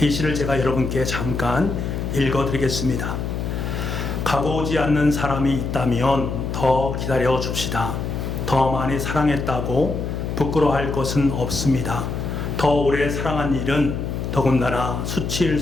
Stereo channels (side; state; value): left; noise; hum, 3 dB below the sound